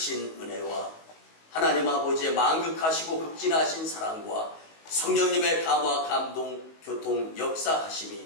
은혜와 하나님 아버지의 만극하시고 극진하신 사랑과 성령님의 감화, 감동, 교통,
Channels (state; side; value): late; right; 19 ms